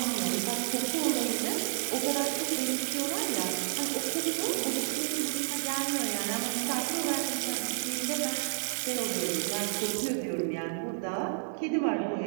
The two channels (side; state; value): left; silent; digital silence